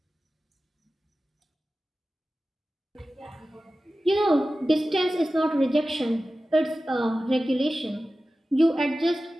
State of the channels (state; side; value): normal; both; correlation 0.95